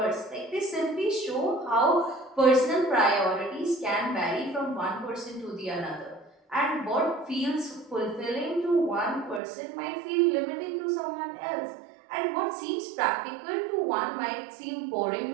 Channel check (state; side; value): drops out; left; at 9.4 s